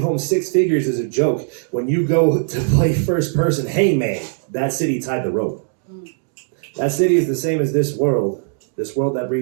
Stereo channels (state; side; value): silent; left; digital silence